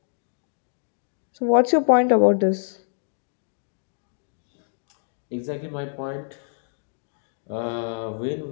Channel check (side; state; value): right; silent; digital silence